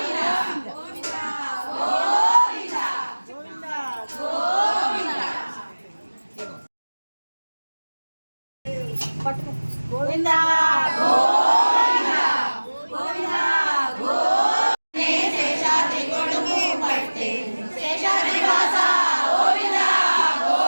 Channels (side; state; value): both; inverted; correlation -1.00